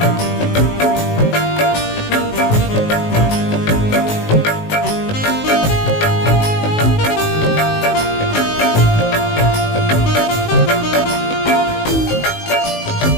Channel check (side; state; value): right; late; 19 ms